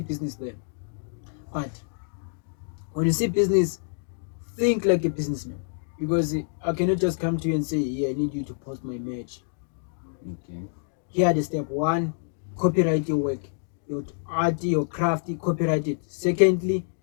business there. But when you see business, think like a businessman. Because I cannot just come to you and say, "Yeah, I need you to post my image." Okay. Here are the step one: copyright your work, your art, your craft, you copyright it. Secondly,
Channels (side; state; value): right; silent; digital silence